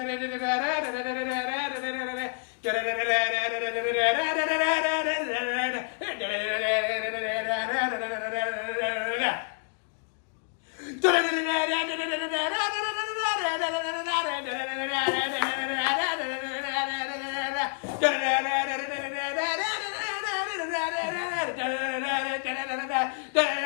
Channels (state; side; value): silent; right; 59 dB below the other